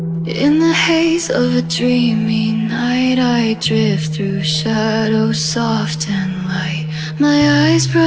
In the haze of a dreamy night, I drift through shadows soft and light. My eyes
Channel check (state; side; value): identical; both; correlation 1.00